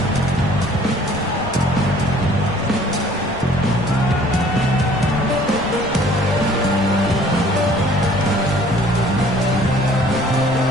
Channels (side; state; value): left; noise; rumble, 13 dB below the sound